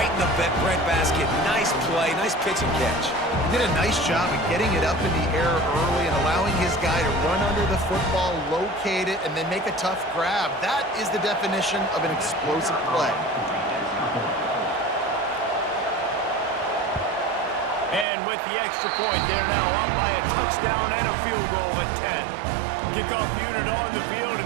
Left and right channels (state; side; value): drops out; left; at 18.1 s